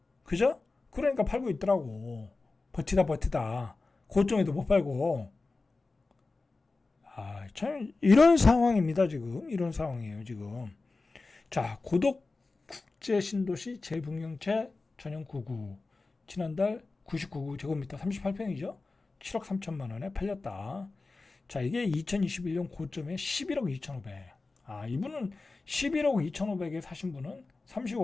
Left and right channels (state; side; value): quieter; right; 3.6 dB